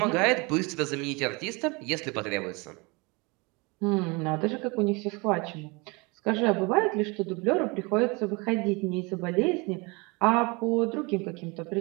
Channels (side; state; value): left; quieter; 27.7 dB